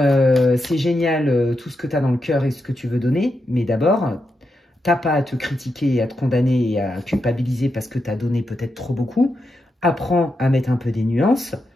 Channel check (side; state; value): both; normal; correlation 0.85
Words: génial tout ce que tu as dans le cœur et ce que tu veux donner, mais d'abord, t'as pas à te critiquer, à te condamner et à culpabiliser parce que tu as donné peut-être trop beaucoup. Apprends à mettre un peu des nuances.